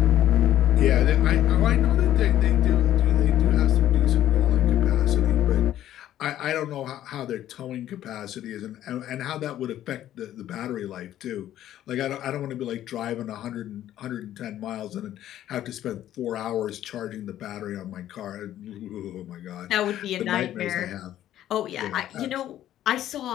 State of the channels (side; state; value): right; quieter; 12.3 dB